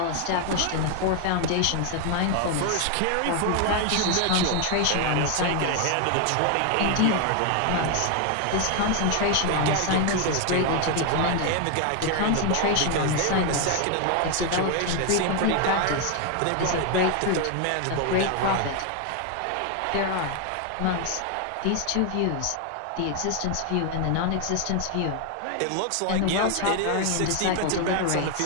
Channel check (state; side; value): different; both; correlation 0.01